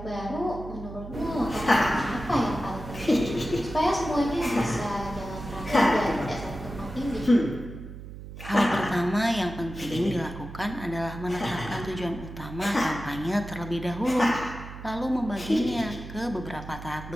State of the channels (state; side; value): noise; right; hum, 12 dB below the sound